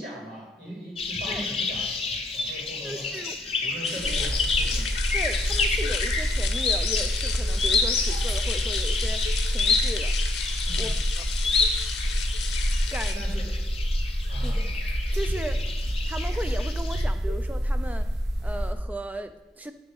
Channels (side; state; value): both; normal; correlation 0.74